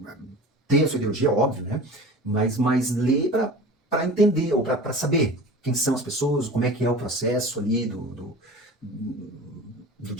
ter a sua ideologia, óbvio, né? Mas ler para entender, ou para saber quem são as pessoas, como é que é o processo ali do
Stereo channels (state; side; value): normal; both; correlation 0.37